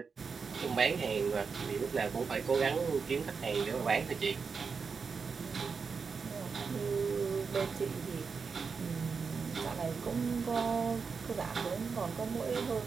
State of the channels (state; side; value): quieter; left; 5.3 dB